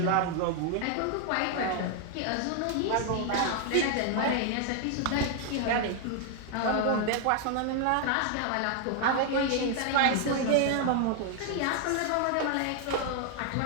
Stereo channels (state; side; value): different; both; correlation 0.00